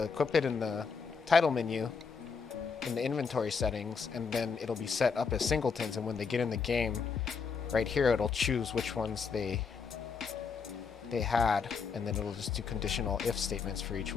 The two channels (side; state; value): right; quieter; 5.4 dB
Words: equip it in the title menu, in the inventory settings, and then it'll be set up as singletons. And when they get in the game, right here, it'll choose which ones they had, and then it'll just do conditional if statements for each